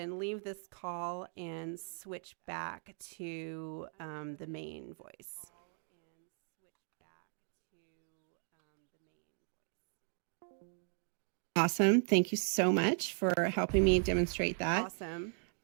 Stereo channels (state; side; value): silent; left; 53 dB below the other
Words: leave this call and switch back to the main voice. Awesome. Thank you so much for helping me demonstrate that. Awesome.